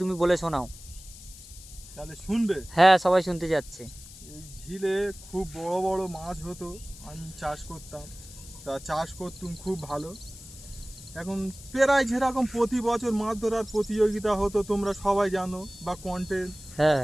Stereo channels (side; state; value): left; noise; hiss, 17 dB below the sound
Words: তুমি বলে শোনাও। তাহলে শুনবে। হ্যাঁ, সবাই শুনতে যাচ্ছে। এই ঝিলে খুব বড় বড় মাছ হতো, আমি চাষ করতাম, তা চাষ করতুম খুব ভালো। এখন প্রায় যেরকম প্রতি বছর মাছ ধরার প্রতিযোগিতা হতো তোমরা সবাই জানো, বা কন্টেন্ট হ্যাঁ